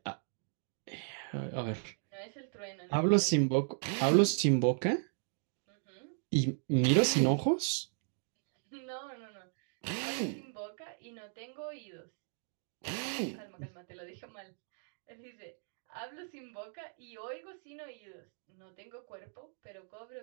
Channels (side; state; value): left; silent; 54 dB below the other